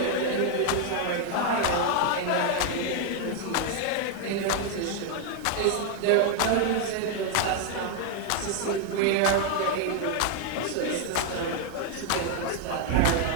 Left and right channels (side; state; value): both; different; correlation 0.00